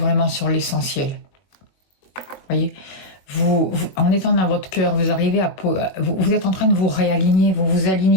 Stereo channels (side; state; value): right; late; 21 ms